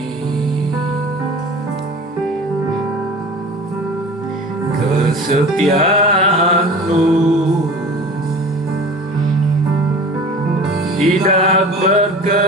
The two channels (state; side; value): normal; both; correlation 0.39